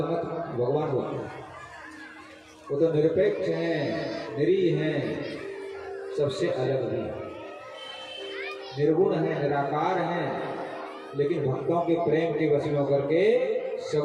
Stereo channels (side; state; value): both; identical; correlation 1.00